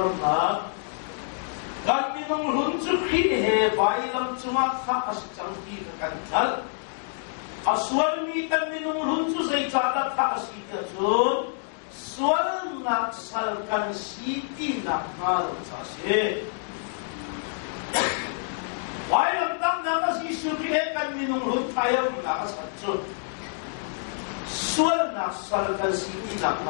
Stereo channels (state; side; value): silent; right; digital silence